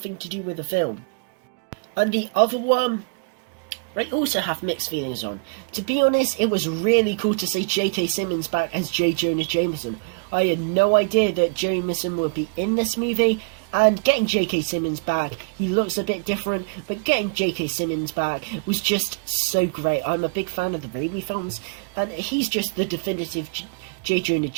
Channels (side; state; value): left; quieter; 34.9 dB